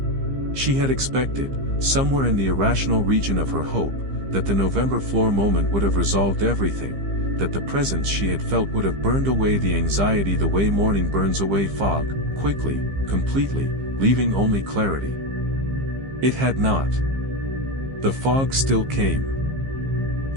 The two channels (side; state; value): left; late; 15 ms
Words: She had expected, somewhere in the irrational region of her hope, that the November floor moment would have resolved everything, that the presence she had felt would have burned away the anxiety the way morning burns away fog, quickly, completely, leaving only clarity. It had not. The fog still came.